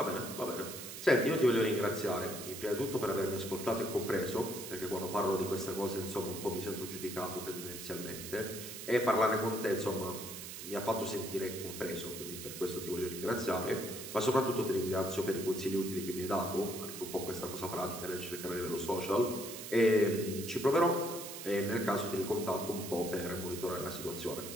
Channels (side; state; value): right; noise; hiss, 9 dB below the sound